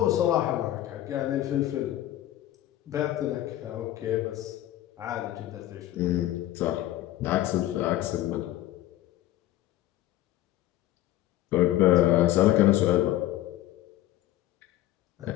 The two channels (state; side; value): quieter; right; 14.3 dB